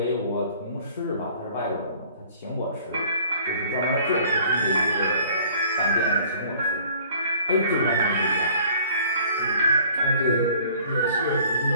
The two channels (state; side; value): inverted; both; correlation -0.53